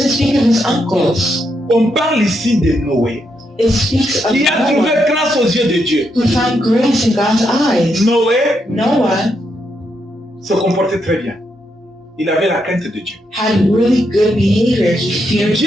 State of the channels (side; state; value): both; normal; correlation 0.80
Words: speak of his uncles. On parle ici de Noé, It speaks of qui a trouvé Noah, grâce aux yeux de Dieu. who found grace in God's eyes. Noé Noah se comportait très bien. Il avait la crainte de Dieu. had really good behavior. He feared